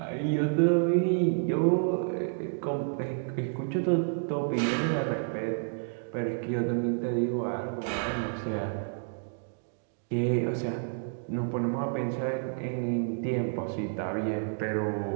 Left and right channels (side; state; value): left; silent; digital silence